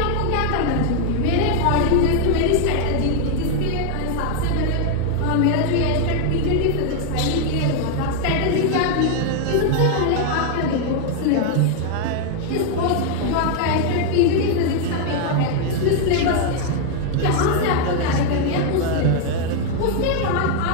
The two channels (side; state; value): both; different; correlation 0.00